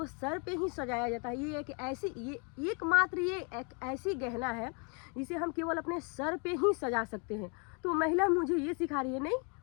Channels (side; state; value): right; quieter; 35.6 dB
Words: सर पे ही सजाया जाता है। ये एक ऐसी ये एक ऐसी गहना है जिसे हम केवल अपने सर पे ही सजा सकते हैं। तो महिला मुझे ये सिखा रही है, नहीं